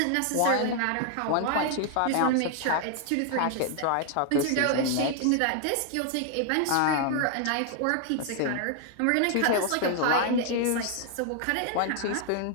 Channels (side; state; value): both; different; correlation 0.00